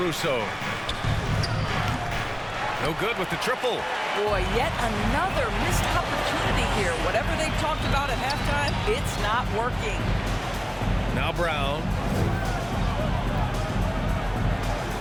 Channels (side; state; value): both; identical; correlation 1.00